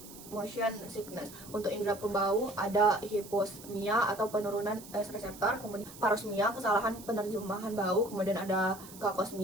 motion sickness. Untuk indera pembau ada hiposmia atau penurunan reseptor, kemudian parosmia kesalahan penerjemahan bau, kemudian ada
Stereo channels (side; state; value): right; noise; hiss, 17 dB below the sound